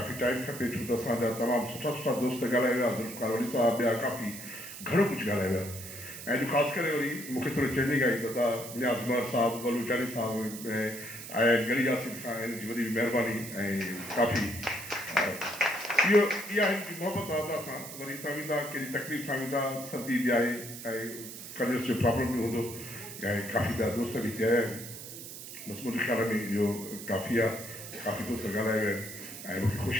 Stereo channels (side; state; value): right; noise; hiss, 11 dB below the sound